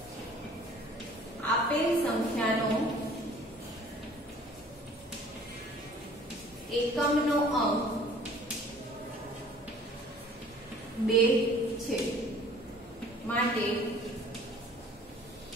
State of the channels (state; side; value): normal; both; correlation 0.51